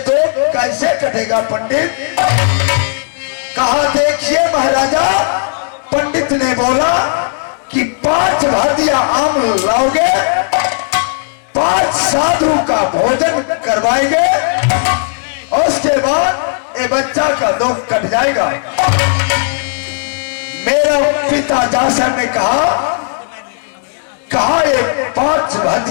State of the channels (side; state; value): right; silent; digital silence